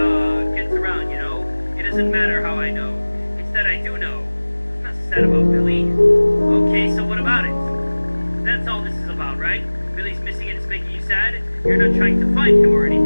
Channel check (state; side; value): inverted; both; correlation -1.00